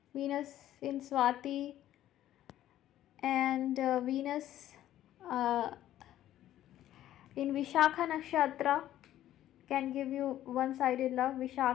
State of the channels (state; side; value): quieter; right; 12.8 dB